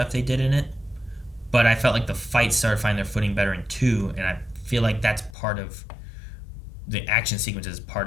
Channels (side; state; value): right; drops out; at 5.4 s